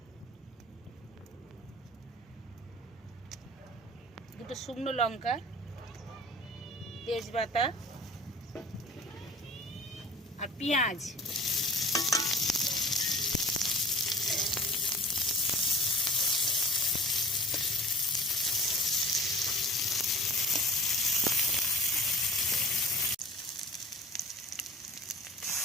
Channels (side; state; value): both; normal; correlation 0.43